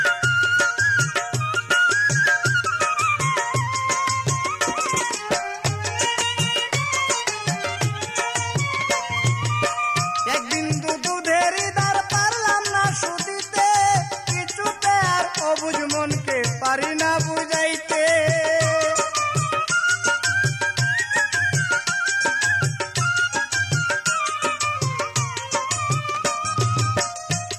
অবুঝ মনকে পারি না বুঝাইতে।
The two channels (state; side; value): identical; both; correlation 1.00